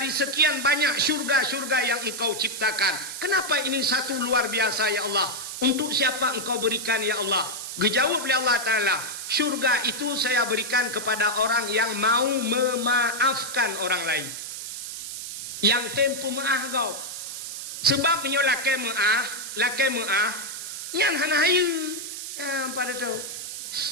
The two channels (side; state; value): right; noise; hiss, 7 dB below the sound